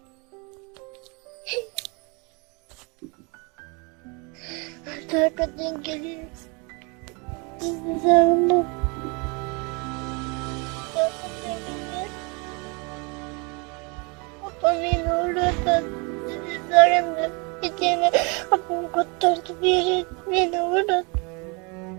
Arkadan geliyoruz. Sizi sarıldım. Babam yine oradan sizi sarıldı. Bir tane babam kurtardı bir yere beni oradan.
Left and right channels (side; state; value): left; quieter; 31.1 dB